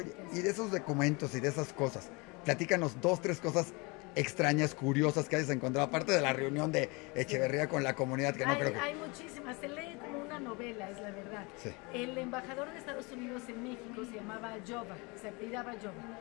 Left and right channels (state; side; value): quieter; right; 28.0 dB